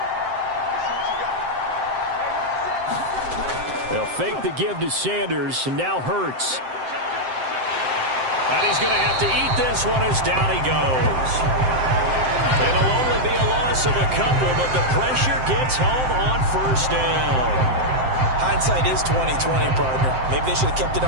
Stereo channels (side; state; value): left; late; 7.7 ms